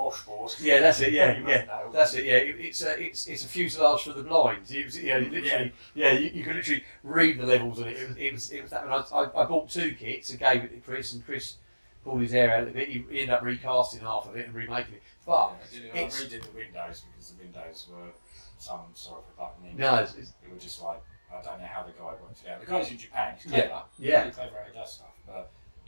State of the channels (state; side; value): inverted; both; correlation -1.00